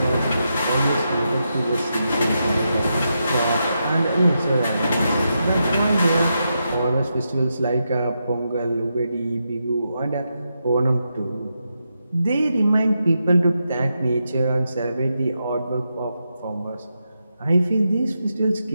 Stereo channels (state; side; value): inverted; both; correlation -0.85